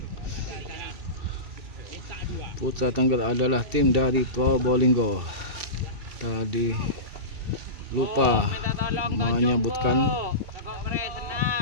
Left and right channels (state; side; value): late; left; 2.6 ms